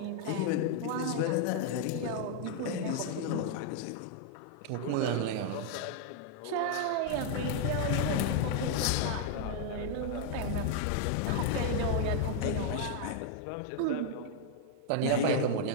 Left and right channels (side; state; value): both; different; correlation 0.00